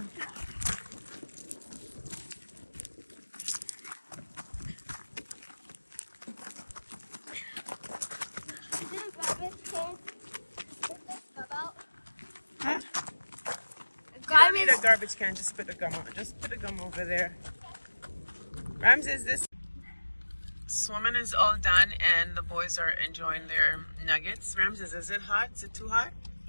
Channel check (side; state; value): both; inverted; correlation -1.00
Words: Huh? You don't need a garbage can. Just put the gum on. Just put the gum over there. Ramses, this swimming is all done and the boys are enjoying their nuggets. Ramses, is it hot? Is it too hot?